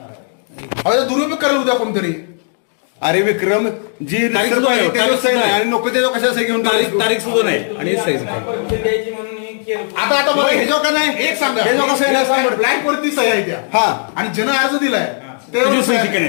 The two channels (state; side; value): silent; right; 58 dB below the other